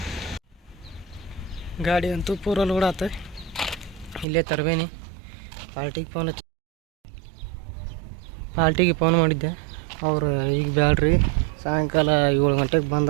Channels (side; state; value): left; drops out; at 4.2 s